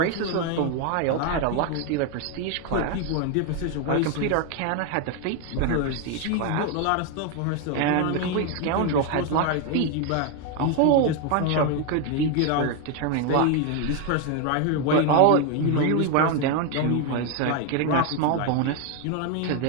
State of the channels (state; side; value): different; both; correlation 0.01